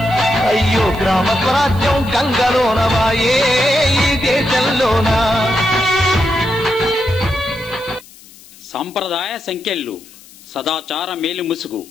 అయ్యో గ్రామ స్వరాజ్యం గంగలోనవాయే ఈ దేశంలోన. సాంప్రదాయ సంఖ్యలు సదాచార మేలు ముసుగు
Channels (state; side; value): noise; left; hiss, 22 dB below the sound